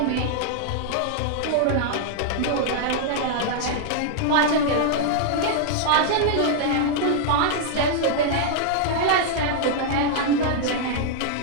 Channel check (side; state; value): both; different; correlation -0.01